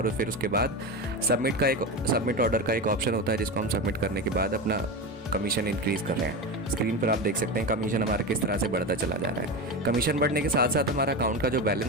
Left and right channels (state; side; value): normal; both; correlation 0.21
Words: फिर उसके बाद सबमिट ऑर्डर का एक ऑप्शन होता है जिसको हम सबमिट करने के बाद अपना कमीशन इंक्रीज़ कर रहे हैं। स्क्रीन पर आप देख सकते हैं कमीशन हमारा किस तरह से बढ़ता चला जा रहा है। कमीशन बढ़ने के साथ साथ हमारा अकाउंट का जो